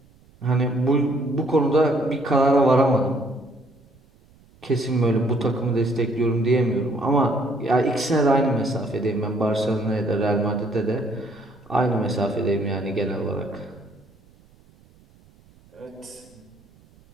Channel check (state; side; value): noise; right; rumble, 29 dB below the sound